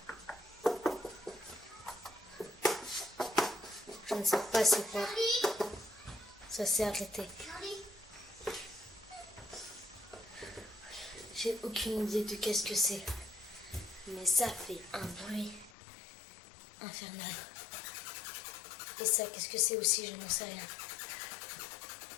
Je ne sais pas c'est quoi. Ça s'est arrêté. J'ai aucune idée de qu'est-ce que c'est. Mais ça fait un bruit infernal. Et ça, qu'est-ce que c'est aussi? Je n'en sais rien.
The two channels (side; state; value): right; drops out; at 15.7 s